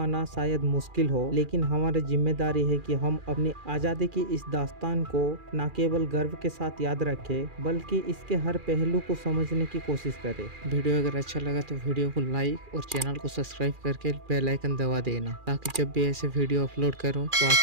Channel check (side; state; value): left; late; 2.4 ms